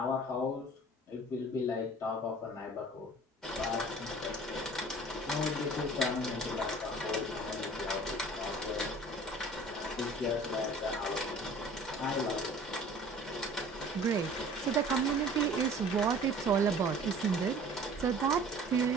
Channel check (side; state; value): both; normal; correlation 0.47